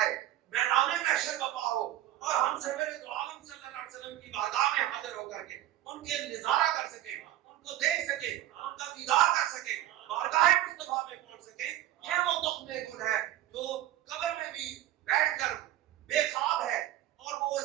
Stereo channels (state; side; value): quieter; left; 13.7 dB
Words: آئے میدان محشر بپا ہو اور ہم سرور دو عالم صلی اللہ علیہ وسلم کی بارگاہ میں حاضر ہو کر کے ان کے نظارہ کر سکے، ان کو دیکھ سکے، ان کا دیدار کر سکے، بارگاہ مصطفیٰ میں پہنچ سکے. یہ وہ تخم گل ہے جو قبر میں بھی بیٹھ کر بے خواب ہے اور وہ